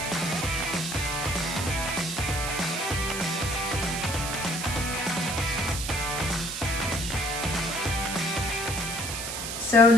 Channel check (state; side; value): noise; right; hiss, 5 dB below the sound